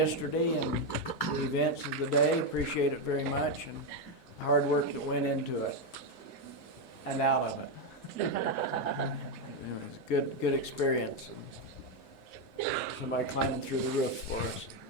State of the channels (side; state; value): both; normal; correlation 0.05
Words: and the events of the day. Appreciate it very much and the hard work that went into it and out of it. It was a good experience. Somebody climbing through the roof for us.